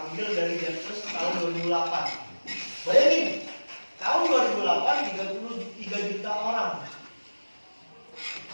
dari Census tahun 2008. Bayangin, tahun 2008 33 juta orang.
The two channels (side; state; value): both; inverted; correlation -1.00